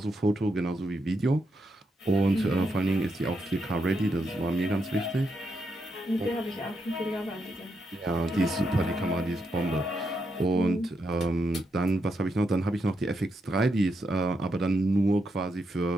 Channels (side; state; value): both; normal; correlation 0.82